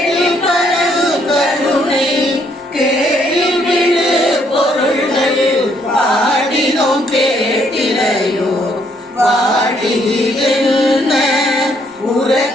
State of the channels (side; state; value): both; normal; correlation 0.69